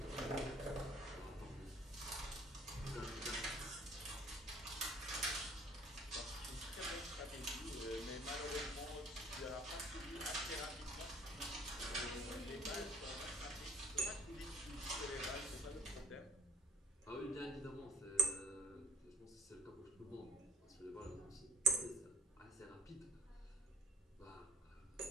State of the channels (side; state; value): both; normal; correlation 0.53